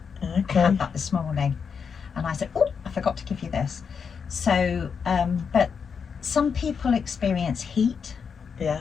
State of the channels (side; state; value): right; quieter; 6.3 dB